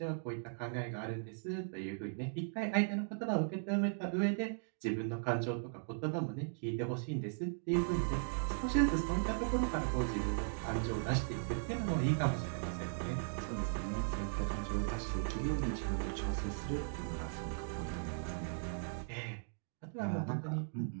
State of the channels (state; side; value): silent; left; digital silence